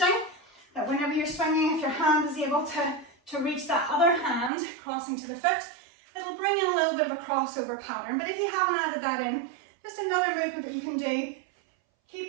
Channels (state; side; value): drops out; left; at 4.5 s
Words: that whenever you're swinging, if your hand is able to reach that other hand, crossing to the foot, it'll bring in a little bit of a crossover pattern. But if you haven't added that in, just another movement that you can do,